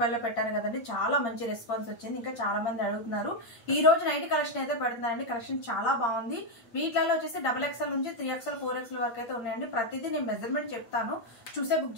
పెట్టాను కదండి చాలా మంచి రెస్పాన్స్ వచ్చింది ఇంకా చాలా మంది అడుగుతున్నారు ఈ రోజు నైటీ కలెక్షన్ అయితే పెడుతున్నానండి కలెక్షన్ చాలా బాగుంది వీటిలో వచ్చేసి XXL నుంచి 3XL 4XL వరకు అయితే ఉన్నాయండి ప్రతిదీ నేను మెజర్మెంట్ చెప్తాను చూసే బుక్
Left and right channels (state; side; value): late; right; 8.7 ms